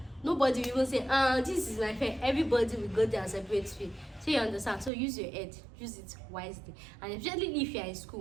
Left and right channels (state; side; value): drops out; left; at 4.9 s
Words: Nobody will even say, this is my friend. Everybody will go there and separate fee. So you understand? So use your head, use it wisely. And especially if you are in